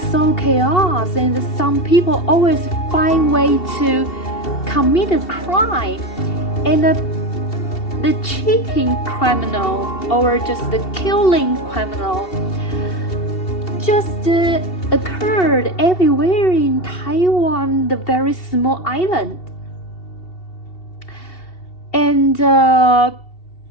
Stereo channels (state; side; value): late; right; 2.7 ms